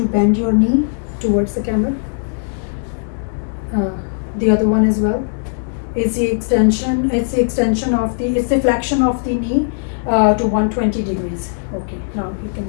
bend your knee towards the camera? The other one as well. It's the extension it's the flexion of the knee to 120 degrees. Okay, now you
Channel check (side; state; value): right; silent; digital silence